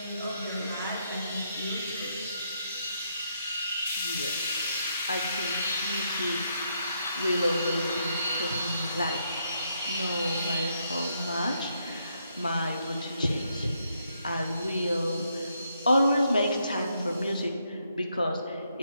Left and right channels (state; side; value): inverted; both; correlation -0.77